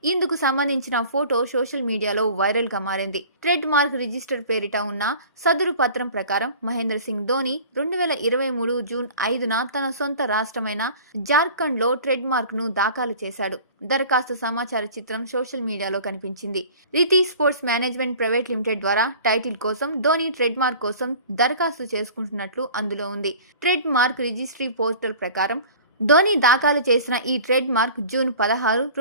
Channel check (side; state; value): both; inverted; correlation -0.44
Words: ఇందుకు సంబంధించిన ఫోటో సోషల్ మీడియాలో వైరల్ గా మారింది. ట్రెడ్ మార్క్ రిజిస్టర్ పేరిట ఉన్న సదరు పత్రం ప్రకారం మహేంద్ర సింగ్ ధోని 2023 జూన్ 5న తన సొంత రాష్ట్రమైన జార్ఖండ్లో ట్రెడ్ మార్క్ ను దాఖలు చేశాడు. దరఖాస్తు సమాచార చిత్రం సోషల్ మీడియాలో కనిపించింది. Riti sports management private limited ద్వారా టైటిల్ కోసం ధోని ట్రెడ్ మార్క్ కోసం దరఖాస్తు చేసుకుంటున్నట్లు అందులో ఉంది. ట్రెడ్ మార్క్ రిజిస్ట్రీ పోర్టల్ ప్రకారం ధోని దాఖలు చేసిన ఈ ట్రేడ్ మార్క్ జూన్ 16,